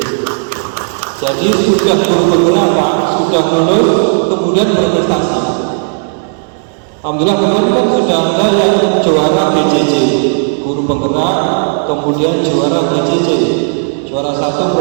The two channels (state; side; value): silent; left; 73 dB below the other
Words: Jadi sudah guru penggerak Pak, sudah lulus, kemudian berprestasi. Alhamdulillah kemarin kan sudah ada yang juara BJJ, guru penggerak, kemudian juara BJJ, juara 1